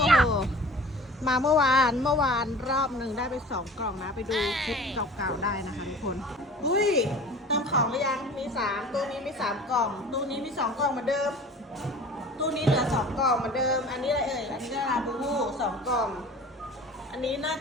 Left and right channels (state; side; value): normal; both; correlation 0.42